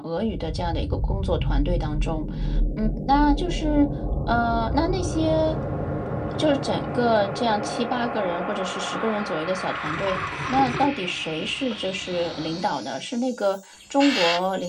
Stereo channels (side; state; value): both; identical; correlation 1.00